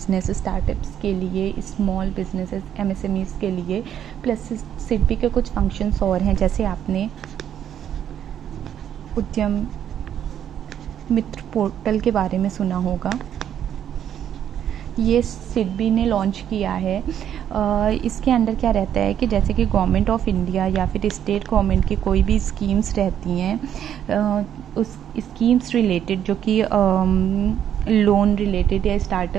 स्टार्टअप्स के लिए, स्मॉल बिजनेसेस MSMEs के लिए। प्लस सिडबी के कुछ फंक्शंस और हैं, जैसे आपने उद्यम मित्र पोर्टल के बारे में सुना होगा, ये सिडबी ने लॉन्च किया है। इसके अंदर क्या रहता है कि जैसे कि गवर्नमेंट ऑफ इंडिया या फिर स्टेट गवर्नमेंट की कोई भी स्कीम्स रहती हैं, उस स्कीम्स रिलेटेड जो कि लोन रिलेटेड या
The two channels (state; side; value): quieter; left; 9.8 dB